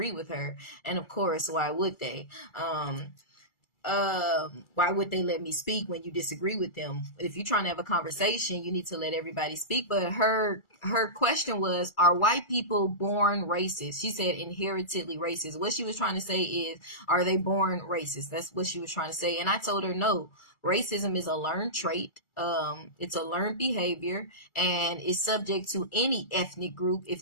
with her. And of course, why would they? Why would they let me speak when you disagree with them? If you're trying to have a conversation, you need to let everybody speak. But her question was, are white people born racist? She said inheritedly racist. What she was trying to say is, are they born racist? That's what she was trying to say. And I told her no. Racism is a learned trait. It's a learned behavior, and is subject to any ethnic group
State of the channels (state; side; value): late; right; 2.3 ms